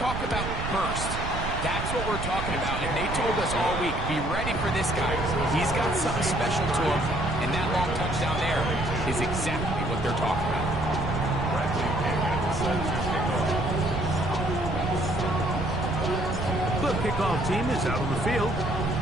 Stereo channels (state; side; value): noise; right; rumble, 5 dB below the sound